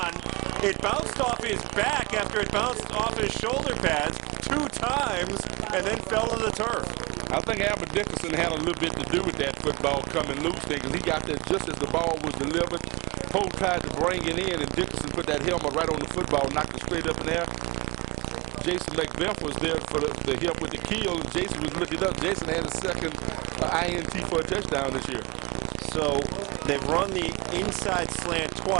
It bounced off his back after it bounced off his shoulder pads 2 times and then fell to the turf. I think Albert Dickerson had a little bit to do with that football coming loose thing, because he got there just as the ball was delivered. Poe tried to bring it in, and Dickerson put that helmet right on the football, knocked it straight up in there. Jason Macbeth was there for the help with the keel, and Jason was looking up. Jason had his 2nd INT for a touchdown this year. So they've run the inside slant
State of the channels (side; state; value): left; quieter; 25.3 dB